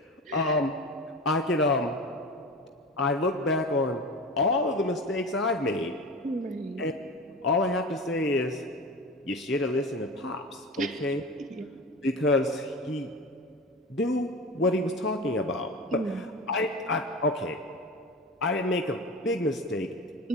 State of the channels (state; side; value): normal; both; correlation 0.30